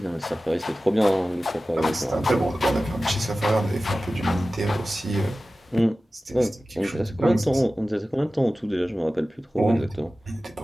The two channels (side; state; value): both; normal; correlation 0.96